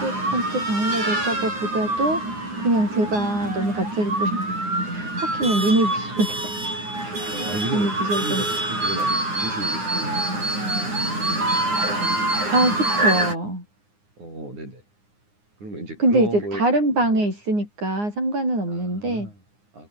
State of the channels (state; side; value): late; left; 9.7 ms